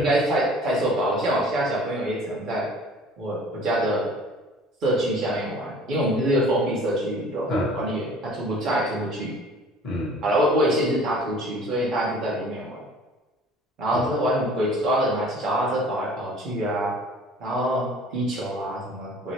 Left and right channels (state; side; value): normal; both; correlation 0.48